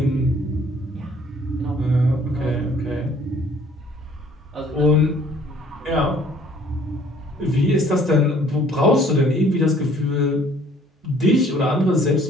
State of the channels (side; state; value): both; normal; correlation 0.57